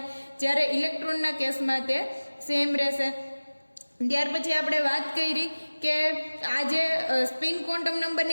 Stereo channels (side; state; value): both; inverted; correlation -1.00